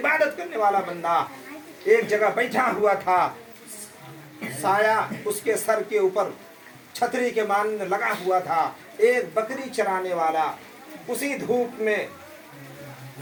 करने वाला बंदा एक जगह बैठा हुआ था, साया उसके सर के ऊपर छतरी के मानिंद लगा हुआ था। एक बकरी चराने वाला उसी धूप में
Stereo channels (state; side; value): identical; both; correlation 1.00